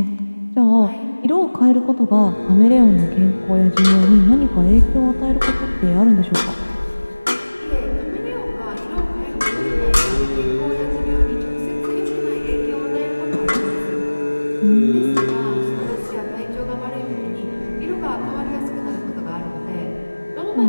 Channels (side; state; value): both; inverted; correlation -1.00